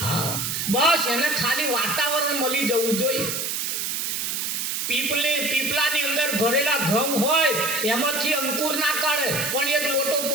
હા, બસ એને ખાલી વાતાવરણ મળી જવું જોઈએ. પીપલાની અંદર ભરેલા ઘઉં હોય એમાંથી અંકુર ના કાઢે, પણ એક લોટો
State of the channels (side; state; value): right; noise; hiss, 1 dB below the sound